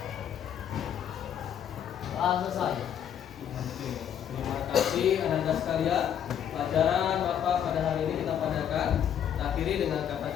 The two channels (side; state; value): right; quieter; 9.3 dB